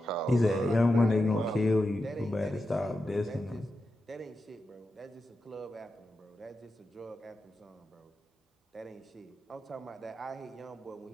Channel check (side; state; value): both; normal; correlation 0.89